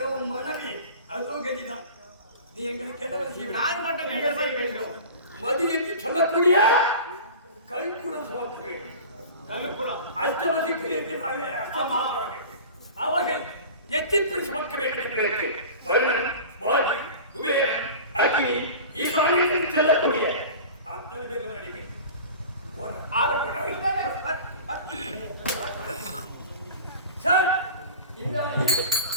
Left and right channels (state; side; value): inverted; both; correlation -0.37